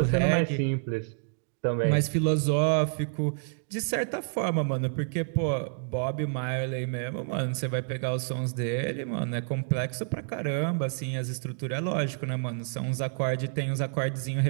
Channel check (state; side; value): silent; left; digital silence